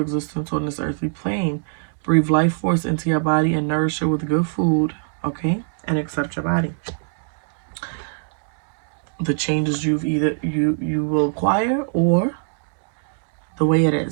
on this earthly plane. Breathe life force into your body and nourish it with good food, okay? And accept your body. The changes you will acquire, or the way it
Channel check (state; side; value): silent; left; digital silence